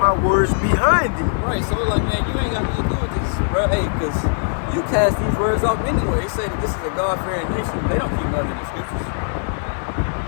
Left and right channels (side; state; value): right; silent; 65 dB below the other